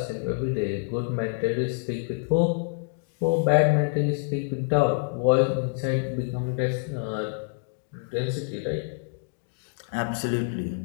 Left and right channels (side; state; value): right; silent; digital silence